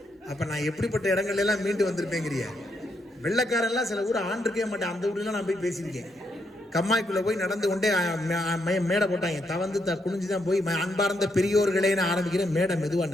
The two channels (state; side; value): normal; both; correlation 0.78